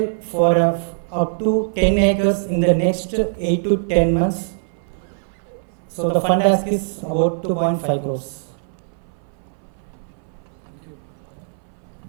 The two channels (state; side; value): silent; left; 62 dB below the other